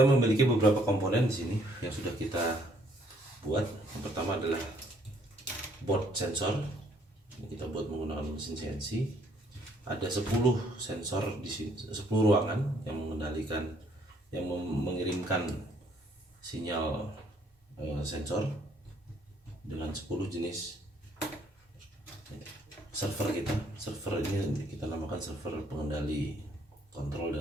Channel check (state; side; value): normal; both; correlation 0.65